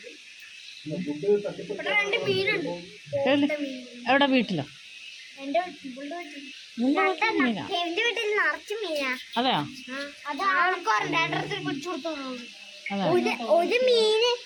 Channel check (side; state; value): both; identical; correlation 1.00